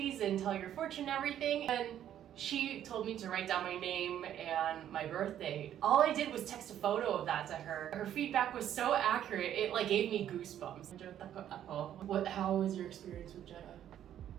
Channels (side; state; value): left; quieter; 10.8 dB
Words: and tell your fortune and everything. And she told me to write down my name and my birth date. All I did was text a photo of that to her. Her feedback was so accurate, it like gave me goosebumps. How was your experience with Jenna?